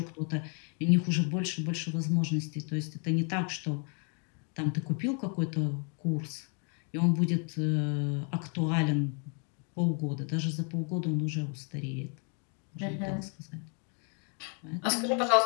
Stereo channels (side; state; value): right; quieter; 39.5 dB